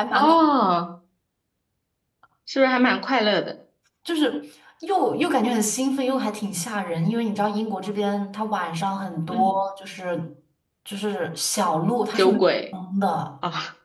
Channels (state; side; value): identical; both; correlation 1.00